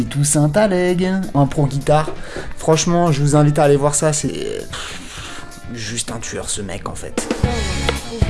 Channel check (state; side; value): identical; both; correlation 1.00